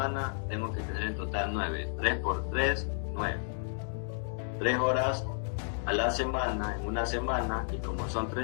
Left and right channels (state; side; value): silent; right; digital silence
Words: tengo que tener en total 9. 3 por 3, 9. 3 horas a la semana, en una semana, y como son